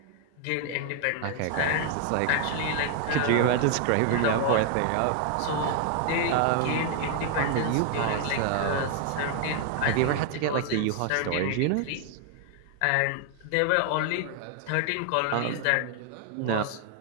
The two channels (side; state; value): both; different; correlation 0.00